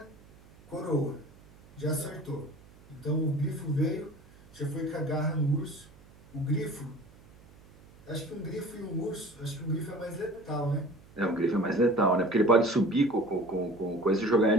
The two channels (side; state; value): right; noise; hum, 24 dB below the sound